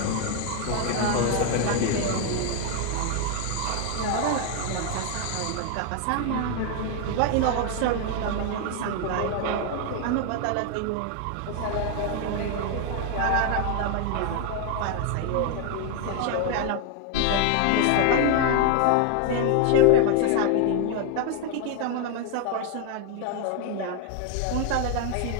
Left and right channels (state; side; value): different; both; correlation 0.00